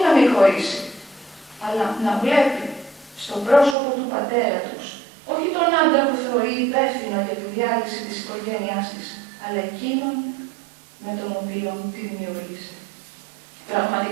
να μην χωρίσει, αλλά να βλέπει στο πρόσωπο του πατέρα τους, όχι τον άντρα που θεωρεί υπεύθυνο για τη διάλυση της οικογένειάς της, αλλά εκείνον με τον οποίο τη δημιούργησε.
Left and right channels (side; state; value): left; drops out; at 3.8 s